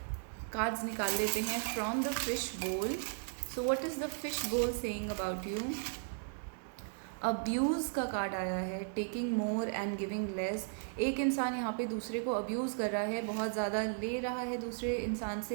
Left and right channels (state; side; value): silent; left; digital silence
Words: कार्ड्स निकाल लेते हैं फ्रॉम द फिश बोल। So what is the fish बोल सेइंग अबाउट यू? अब्यूज़ का कार्ड आया है, taking more and giving less. एक इंसान यहाँ पे दूसरे को अब्यूज़ कर रहा है, बहुत ज़्यादा ले रहा है दूसरे इंसान